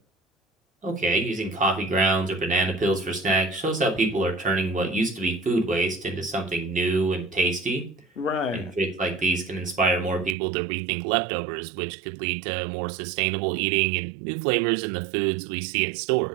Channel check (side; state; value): left; drops out; at 10.4 s